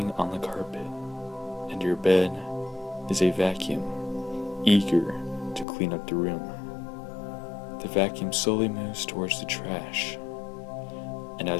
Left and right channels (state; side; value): drops out; right; at 5.7 s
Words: on the carpet, and your bed is a vacuum, eager to clean up the room. The vacuum slowly moves towards the trash, and